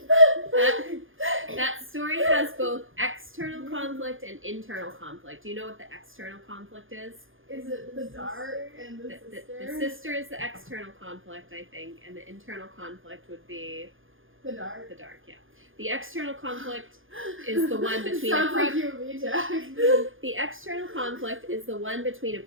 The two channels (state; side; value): late; left; 0.58 ms